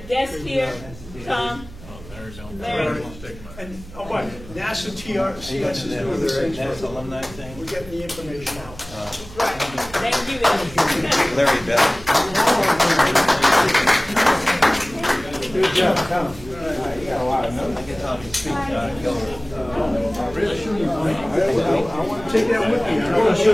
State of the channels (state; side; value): noise; right; hum, 17 dB below the sound